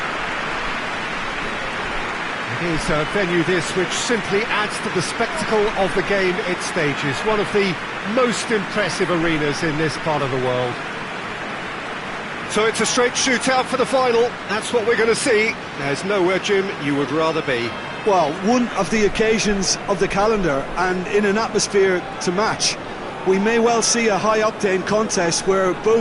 It is a venue this which simply adds to the spectacle of the game it stages. One of the most impressive arenas in this part of the world. So it's a straight shootout for the final. That's what we're going to see. There's nowhere, Jim, you would rather be. Well, one of the occasions of the calendar, and in an atmosphere to match. We may well see a high-octane contest where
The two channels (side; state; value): both; identical; correlation 1.00